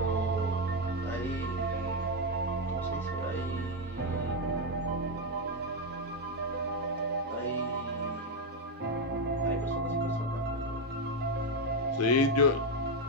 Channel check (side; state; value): both; normal; correlation 0.05